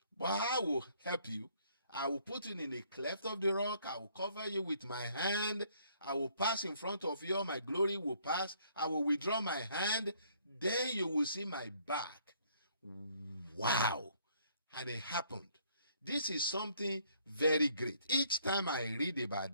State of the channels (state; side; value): inverted; both; correlation -0.64